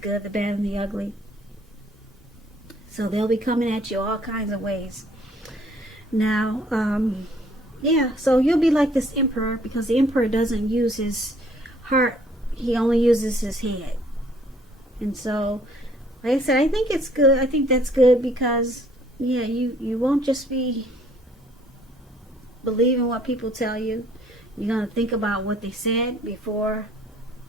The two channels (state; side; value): normal; both; correlation 0.61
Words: the Bad, and the Ugly. So they'll be coming at you all kinds of ways. Now, yeah, so you'll be like this Emperor, because the Emperor doesn't use his heart. He only uses his head. And so, like I said, I think it's good. I think that's good because, yeah, you won't just be believing what people tell you. You're going to think about what they said before